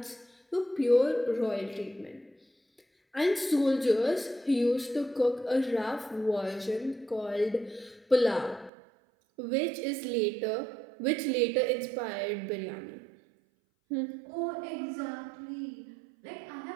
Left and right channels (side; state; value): left; drops out; at 8.7 s